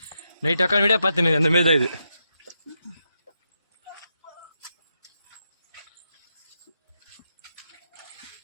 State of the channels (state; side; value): inverted; both; correlation -0.84